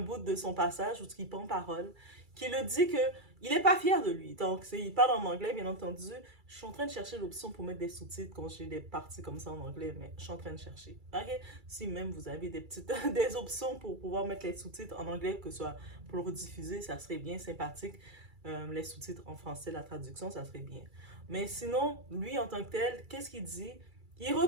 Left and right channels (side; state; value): left; late; 2.3 ms